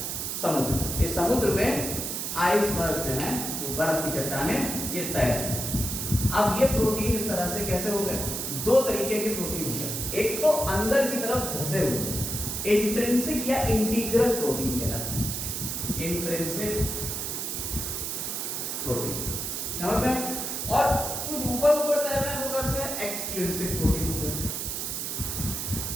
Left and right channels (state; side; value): noise; right; hiss, 3 dB below the sound